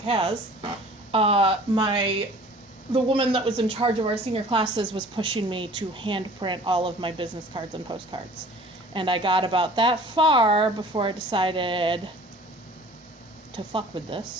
CAS. The woman that was in charge of our senior classes was pushing me to hand print all of my business cards and postcards, and I got about that far before I decided to fuck with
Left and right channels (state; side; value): normal; both; correlation 0.48